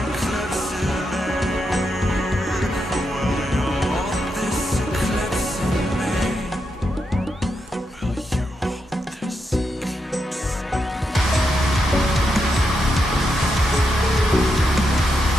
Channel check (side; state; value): both; normal; correlation 0.84